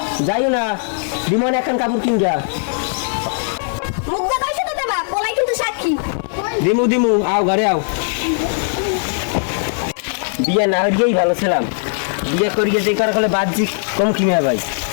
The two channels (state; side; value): silent; right; digital silence